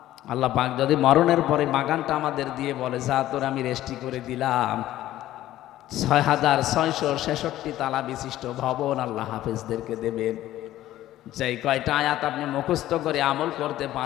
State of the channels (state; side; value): quieter; right; 14.1 dB